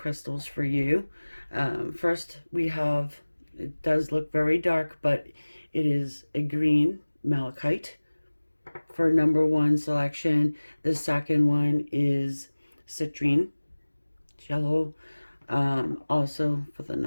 for you. First, we have, it does look very dark, but it is a green malachite for number 1 selection. The second one is citrine, yellow. Also for the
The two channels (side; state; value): both; inverted; correlation -1.00